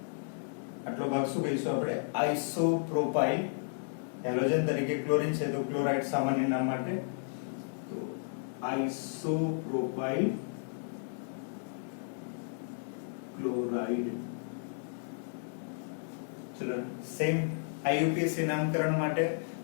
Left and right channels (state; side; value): silent; right; 56 dB below the other